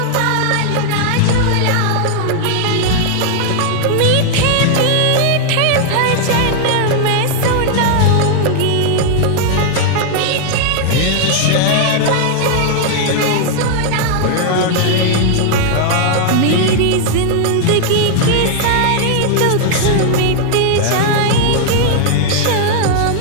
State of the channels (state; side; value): different; both; correlation 0.00